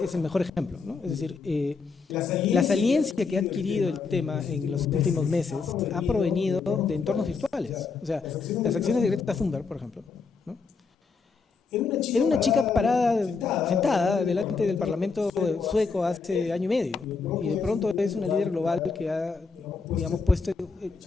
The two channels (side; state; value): right; quieter; 4.8 dB